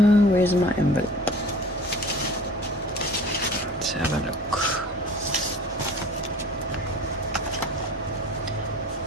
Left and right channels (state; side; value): normal; both; correlation 0.44